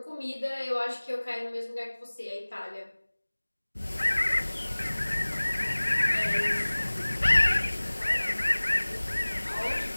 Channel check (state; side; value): inverted; both; correlation -1.00